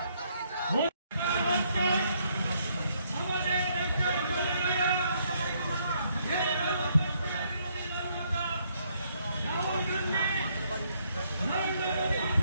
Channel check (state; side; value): inverted; both; correlation -0.71